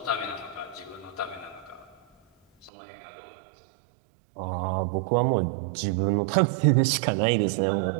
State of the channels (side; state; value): left; drops out; at 2.7 s